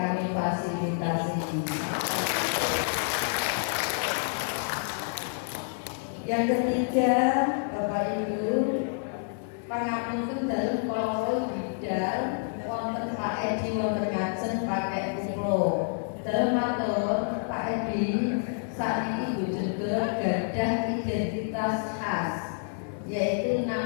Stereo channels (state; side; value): silent; right; digital silence